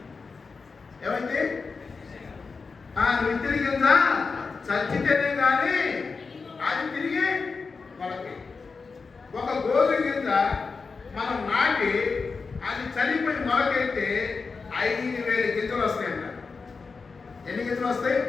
ఏమైంది? విత్తిన గింజ చచ్చితేనే కానీ అది తిరిగి మొలకి. ఒక గోధుమ గింజ మనం నాటి అది చనిపోయి మొలకెత్తే 5,000 గింజలు వస్తాయంట. ఎన్ని గింజలు వస్తాయి?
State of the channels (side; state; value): right; quieter; 4.7 dB